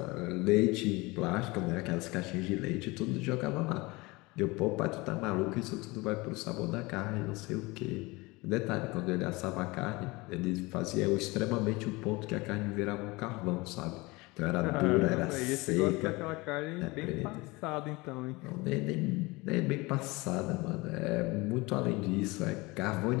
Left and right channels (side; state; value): right; quieter; 23.5 dB